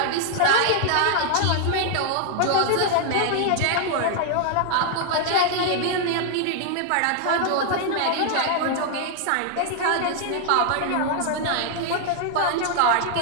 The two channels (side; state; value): both; different; correlation 0.00